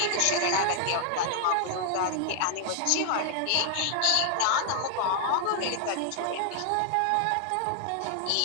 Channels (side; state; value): both; different; correlation 0.00